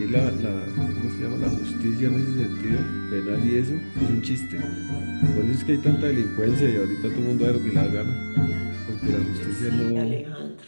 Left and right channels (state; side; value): inverted; both; correlation -1.00